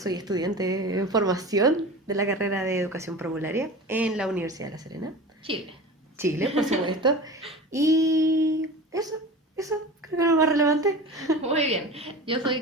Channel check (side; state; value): both; normal; correlation 0.34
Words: estudiante en formación de la carrera de Educación Parvularia en la Universidad de La Serena, Chile. Chile, por supuesto. Y eso, creo que es lo más relevante. Muy bien. Yo soy